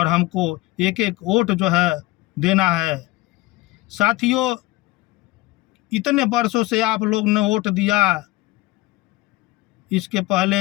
हमको एक एक वोट जो है देना है। साथियों, इतने वर्षों से आप लोग ने वोट दिया, इसके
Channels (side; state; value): right; quieter; 19.8 dB